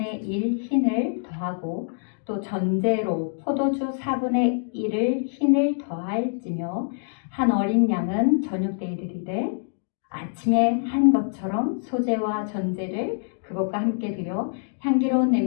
1 흰을 더하고 또 전제로 포도주 4분의 1을 흰을 더할지며 한 어린 양은 저녁 때에 드리되 아침에 한 것처럼 소제와 전제를 그것과 함께 드려 향기로운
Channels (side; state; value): right; silent; digital silence